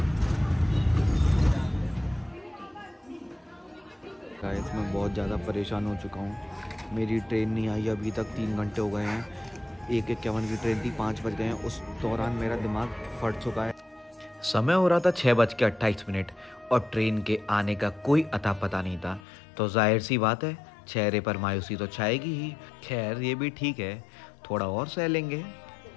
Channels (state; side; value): drops out; right; at 19.2 s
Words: गाइस मैं बहुत ज़्यादा परेशान हो चुका हूँ। मेरी ट्रेन नहीं आई अभी तक, 3 घंटे हो गए हैं। 1:51 की ट्रेन थी, 5 बज गए हैं। उस दौरान मेरा दिमाग फट चुका है। समय हो रहा था 6:28 और ट्रेन के आने का कोई अता पता नहीं था। तो जाहिर सी बात है, चेहरे पर मायूसी तो छाएगी ही। खैर ये भी ठीक है, थोड़ा और सह लेंगे।